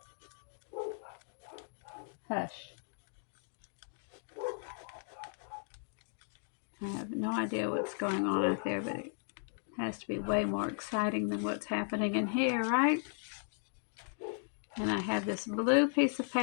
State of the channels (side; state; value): right; silent; digital silence